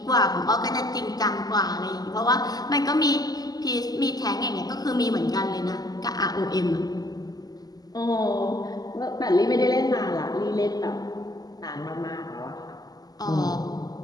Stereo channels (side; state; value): right; late; 0.18 ms